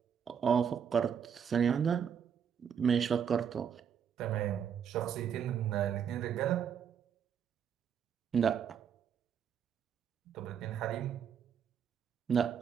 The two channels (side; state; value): left; quieter; 7.8 dB